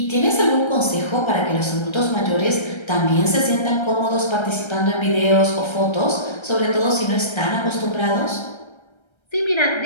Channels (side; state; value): right; late; 1.3 ms